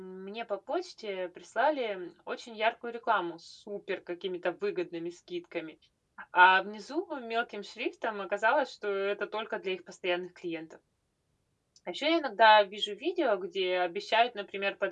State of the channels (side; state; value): both; identical; correlation 1.00